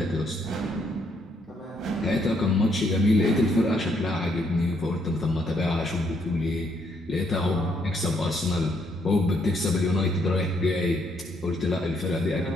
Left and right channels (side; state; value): both; normal; correlation 0.72